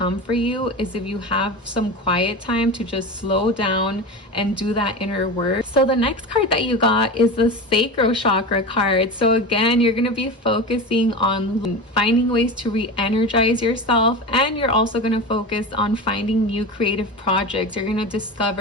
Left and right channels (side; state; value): both; normal; correlation 0.27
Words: for you is if you have some quiet time to just slow down and do that inner work. So the next card that you got is the Sacral Chakra card. So again, you're going to be focusing on finding ways to re-energize yourself, and you're also going to focus on finding new creative projects. You're going to